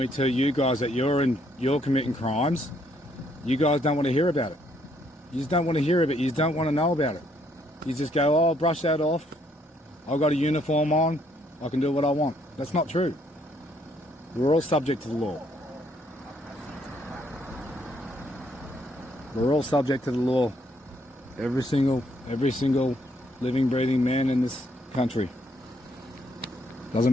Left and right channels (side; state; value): both; normal; correlation 0.70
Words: tell you guys that you're committing crimes, you guys don't want to hear about it. You just don't want to hear of it. You just don't want to know about it. You just go, oh, brush that off. I've got a uniform on. I can do what I want. That's not true. We're all subject to the law. We're all subject to the law. Every single living, breathing man in this country. Doesn't